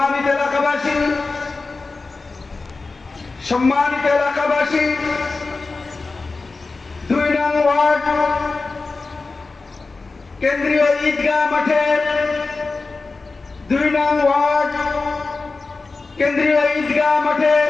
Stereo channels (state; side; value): quieter; right; 3.8 dB